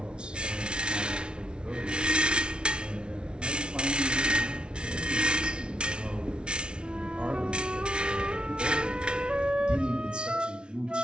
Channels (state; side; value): late; left; 0.056 ms